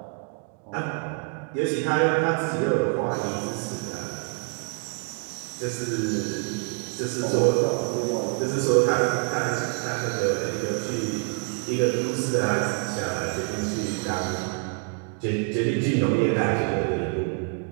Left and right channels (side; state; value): left; quieter; 38.0 dB